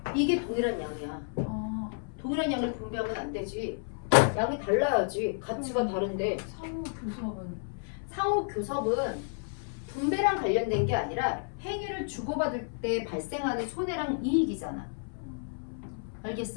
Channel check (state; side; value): silent; right; 57 dB below the other